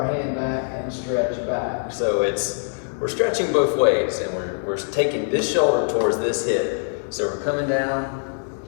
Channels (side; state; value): right; silent; digital silence